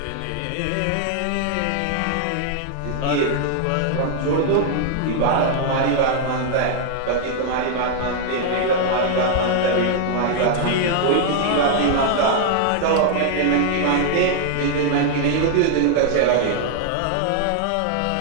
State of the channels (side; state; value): both; different; correlation 0.00